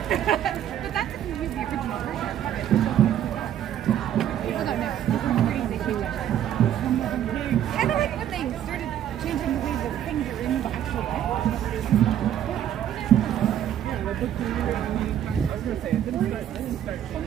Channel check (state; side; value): quieter; left; 10.7 dB